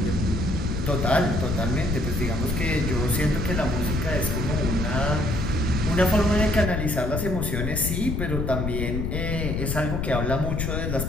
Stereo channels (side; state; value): left; noise; rumble, 1 dB below the sound